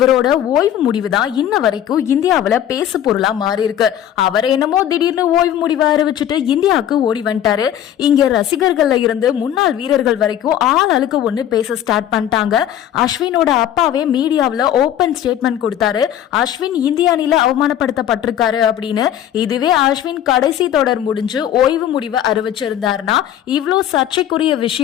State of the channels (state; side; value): quieter; right; 10.8 dB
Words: ஓய்வு முடிவு தான் இன்ன வரைக்கும் இந்தியாவில பேசு பொருளா மாறி இருக்கு. அவர் என்னமோ திடீர்னு ஓய்வு முடிவை அறிவிச்சுட்டு இந்தியாவுக்கு ஓடி வந்துட்டாரு. இங்க ரசிகர்கள்ல இருந்து முன்னாள் வீரர்கள் வரைக்கும் ஆள் அழுக்க ஒண்ணு பேச ஸ்டார்ட் பண்ணிட்டாங்க. அஸ்வினோட அப்பாவே மீடியாவில ஓபன் ஸ்டேட்மெண்ட் கொடுத்தாரு. அஸ்வின் இந்திய அணில அவமானப்படுத்தப்பட்டிருக்காரு அப்படின்னு. இதுவே அஸ்வின் கடைசி தொடர் முடிஞ்சு ஓய்வு முடிவை அறிவிச்சிருந்தாருன்னா இவ்வளோ சர்ச்சைக்குரிய